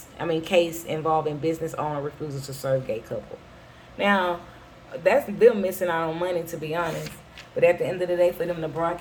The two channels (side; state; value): both; identical; correlation 1.00